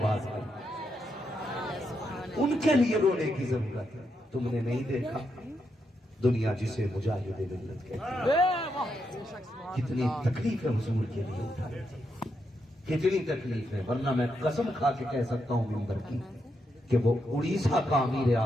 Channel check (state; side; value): normal; both; correlation 0.82